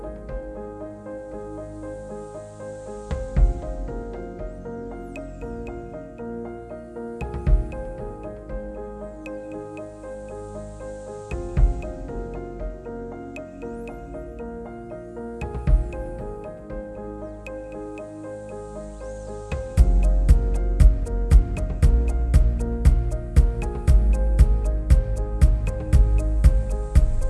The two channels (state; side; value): identical; both; correlation 1.00